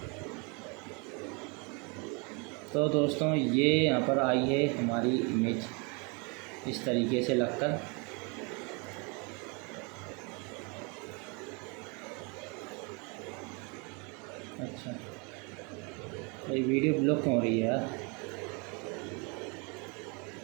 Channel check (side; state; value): left; quieter; 32.0 dB